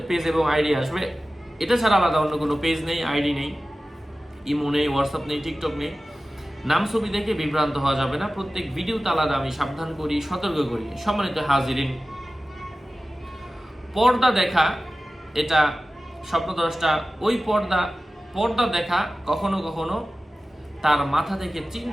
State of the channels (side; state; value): both; normal; correlation 0.96